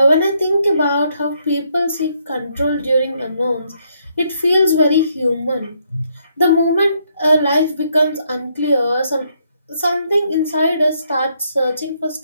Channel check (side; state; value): both; inverted; correlation -0.73